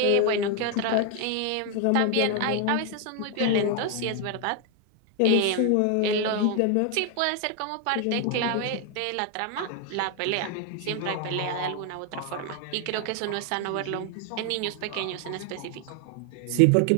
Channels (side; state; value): both; different; correlation 0.01